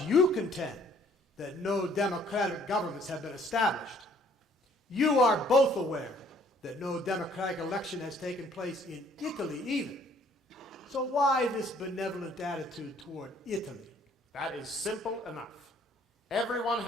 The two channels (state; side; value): normal; both; correlation 0.61